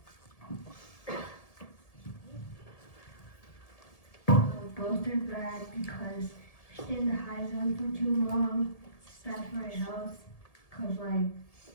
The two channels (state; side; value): late; right; 1.7 ms